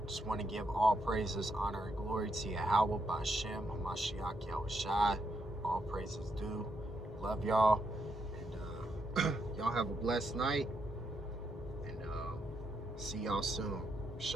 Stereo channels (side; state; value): both; normal; correlation 0.79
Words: Just want to give all praises, honor, and glory to Yahweh, Bashem, Hamashiach, Yahushai. All praises due. Love y'all. And y'all have a blessed night. And see y'all soon.